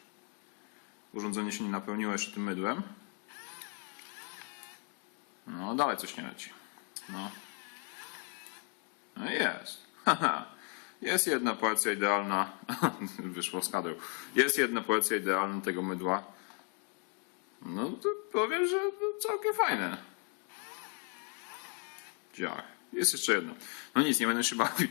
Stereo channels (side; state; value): right; quieter; 39.9 dB